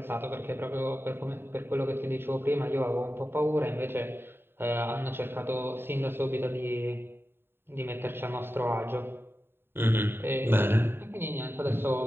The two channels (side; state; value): left; late; 0.11 ms